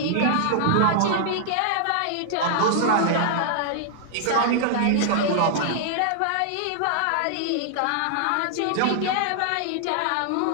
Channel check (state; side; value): different; both; correlation -0.01